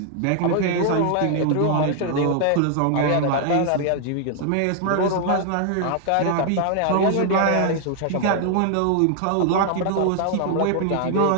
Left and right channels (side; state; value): both; different; correlation 0.00